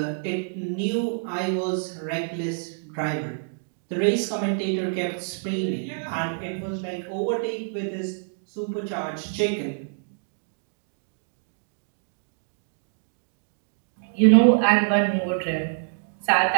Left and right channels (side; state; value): left; silent; 61 dB below the other